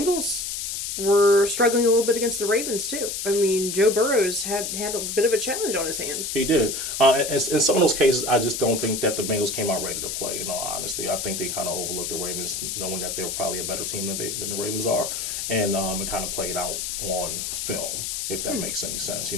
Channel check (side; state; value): left; noise; hiss, 3 dB below the sound